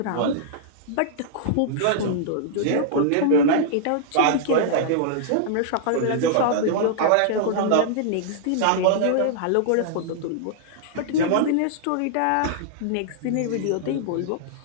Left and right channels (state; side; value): different; both; correlation -0.01